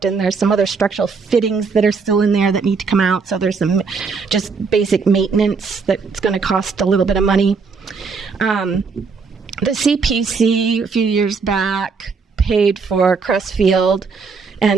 and there's some other structural fittings that are still in there that need to come out, so there's some just basic maintenance that's going to cost a little bit of money. The CPC, a few years back, paid for Crestfield,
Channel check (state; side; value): quieter; left; 5.0 dB